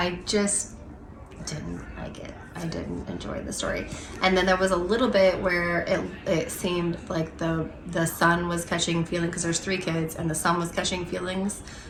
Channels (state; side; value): identical; both; correlation 1.00